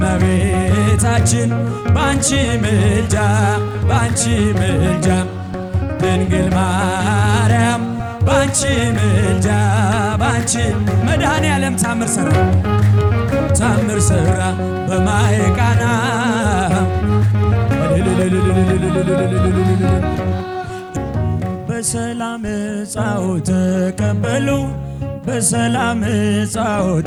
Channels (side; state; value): both; identical; correlation 1.00